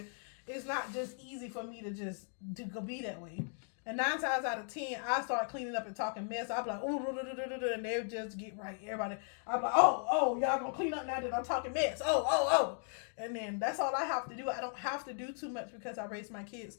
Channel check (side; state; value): right; silent; 53 dB below the other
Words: it's not just easy for me to go be that way. And 9 times out of 10, I start cleaning up and talking mess. I'll be like, ooh, and they'll just get right. Everybody, I'll be like, oh, y'all gonna clean up now that I'm talking mess. Oh. And then that's all I have to do. I don't have to do too much because I raise my kids.